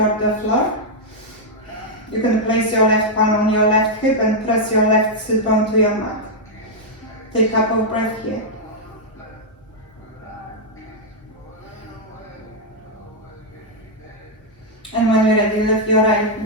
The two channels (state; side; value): normal; both; correlation -0.04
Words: the floor. You can place your left palm on your left hip and press your left sit bone to your mat. Take a couple of breaths here. And when you're ready, lift your right